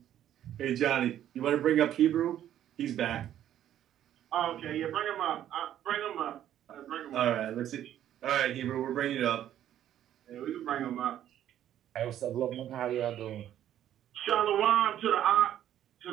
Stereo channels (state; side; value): quieter; left; 11.3 dB